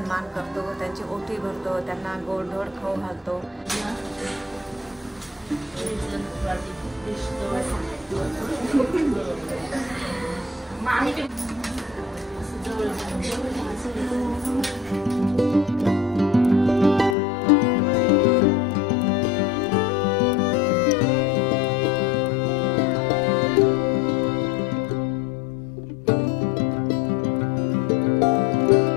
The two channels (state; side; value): drops out; right; at 17.2 s